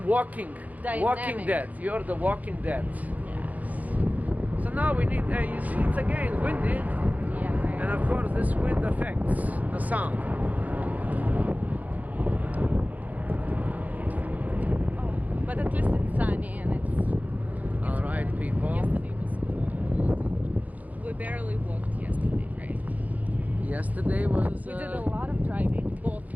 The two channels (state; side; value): late; left; 0.077 ms